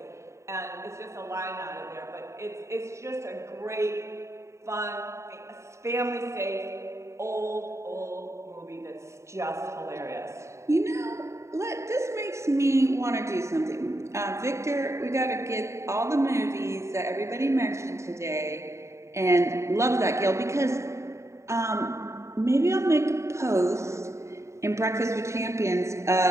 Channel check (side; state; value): left; late; 0.14 ms